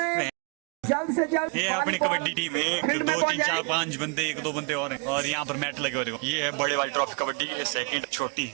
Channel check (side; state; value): left; quieter; 32.7 dB